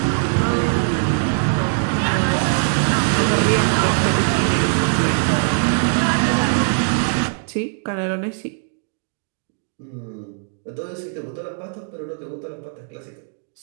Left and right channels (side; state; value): left; silent; digital silence